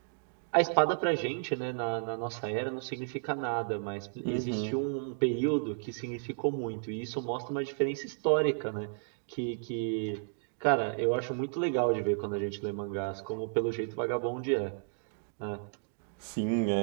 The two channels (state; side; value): silent; left; digital silence